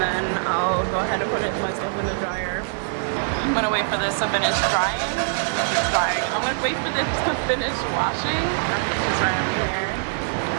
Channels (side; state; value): left; silent; digital silence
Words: then I'll go ahead and put my stuff in the dryer. I'm gonna wait for this to finish drying. I'm gonna wait for this to finish washing. It's right over here.